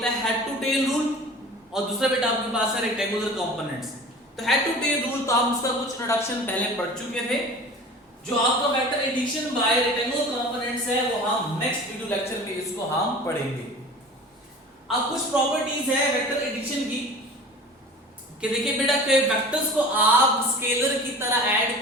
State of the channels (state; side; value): normal; both; correlation 0.40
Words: है हेड टू टेल रूल और दूसरा बेटा आपके पास है रेक्टेंगुलर कंपोनेंट्स। तो हेड टू टेल रूल तो आप उसका कुछ इंट्रोडक्शन पहले पढ़ चुके थे। जो आपका vector addition by rectangular components है वो हम नेक्स्ट वीडियो लेक्चर में इसको हम पढ़ेंगे। अब कुछ प्रॉपर्टीज है वेक्टर एडिशन की कि देखिए बेटा कि वेक्टर्स को आप स्केलर की तरह ऐड